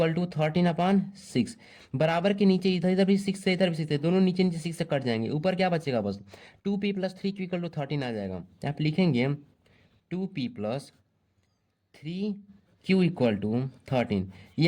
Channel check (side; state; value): both; identical; correlation 1.00